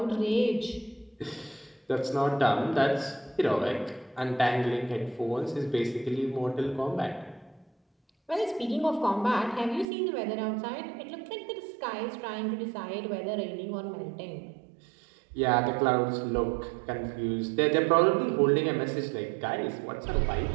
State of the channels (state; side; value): drops out; left; at 9.9 s